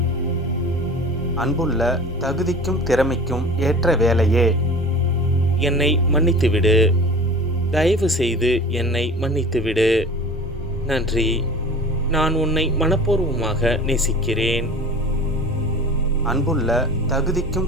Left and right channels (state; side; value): normal; both; correlation 0.39